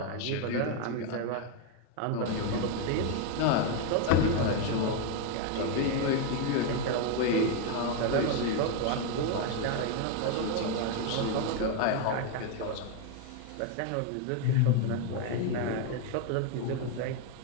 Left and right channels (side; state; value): both; different; correlation 0.01